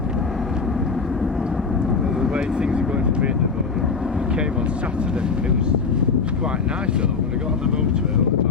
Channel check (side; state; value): right; quieter; 5.0 dB